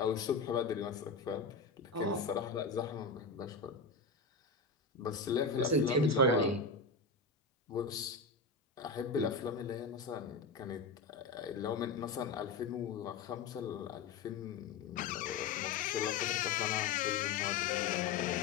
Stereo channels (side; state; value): right; quieter; 4.3 dB